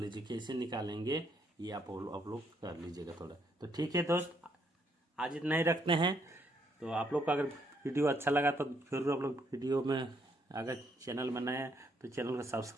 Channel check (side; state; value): both; normal; correlation 0.72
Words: कैसे निकालेंगे ये आप लोग कर लीजिएगा थोड़ा। तो ठीक है दोस्त, आज इतना ही रखते हैं। तो आप लोग का अगर वीडियो अच्छा लगा तो जरूर आप लोग वीडियो में, अगर चैनल में नए हैं तो चैनल को